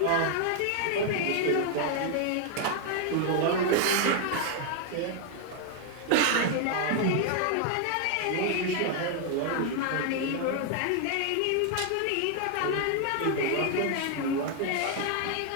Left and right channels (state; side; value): different; both; correlation 0.00